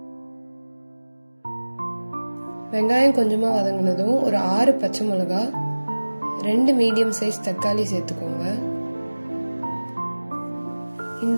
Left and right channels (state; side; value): inverted; both; correlation -1.00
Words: வெங்காயம் கொஞ்சமா வதங்கினதும் ஒரு 6 பச்சை மிளகாய், 2 மீடியம் சைஸ் தக்காளி சேர்த்துக்கோங்க.